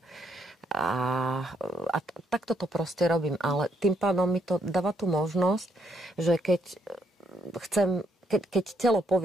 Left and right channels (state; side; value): normal; both; correlation 0.73